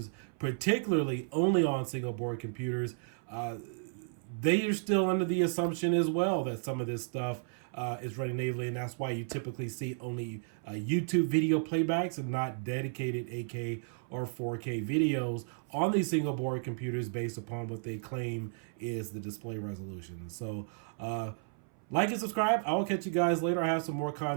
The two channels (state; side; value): silent; left; 56 dB below the other